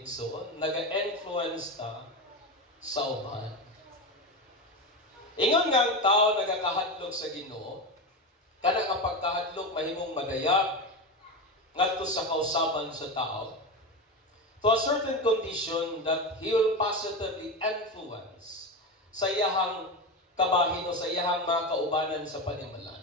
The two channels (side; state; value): both; normal; correlation 0.19